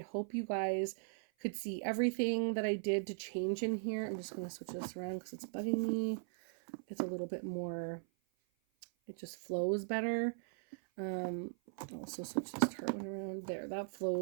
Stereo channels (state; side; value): silent; left; 52 dB below the other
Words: hope you guys could see everything that I did to change in here. I'm just going to switch this around because it's bugging me. It's a little bit more, it just flows better. I'll also switch this Tarte one around there. That